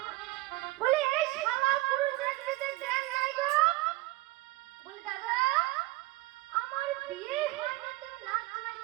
বলে এই শালা পুরো দেখতে দেন নাই গো বলে দাদা আমার বিয়ে হয়নি তুমি নাম জামাই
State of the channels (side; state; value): left; quieter; 19.7 dB